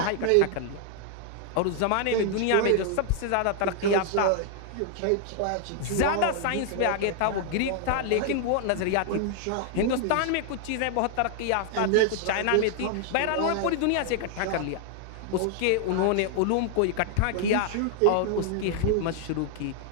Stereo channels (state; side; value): different; both; correlation 0.00